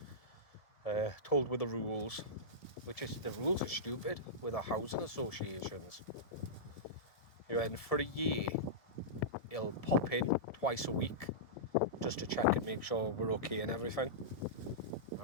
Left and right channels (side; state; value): right; late; 1.7 ms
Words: Told with the rules, the rules are stupid with our housing associations. And for a year, he'll pop in twice a week just to check and make sure we're okay and everything.